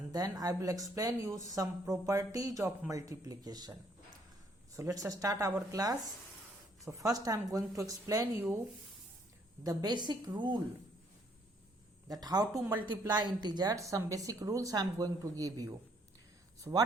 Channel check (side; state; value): both; normal; correlation 0.67